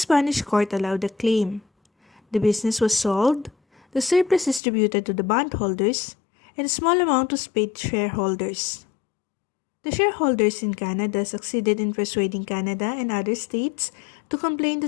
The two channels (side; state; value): right; drops out; at 4.6 s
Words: court allowed the claim. The business was sold, the surplus distributed to the bondholders, and a small amount was paid to shareholders. The shareholders in Canada succeeded in persuading Canada and other states to complain that